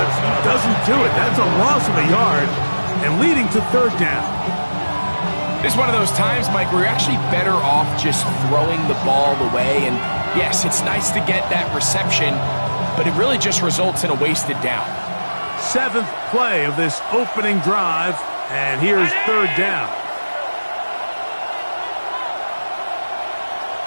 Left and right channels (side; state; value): both; inverted; correlation -1.00